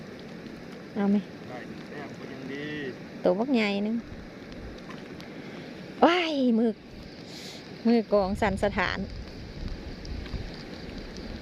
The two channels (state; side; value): identical; both; correlation 1.00